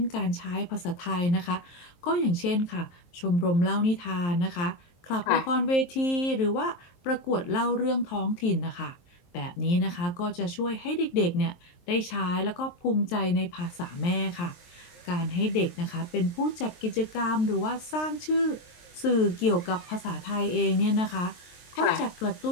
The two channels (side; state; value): right; late; 23 ms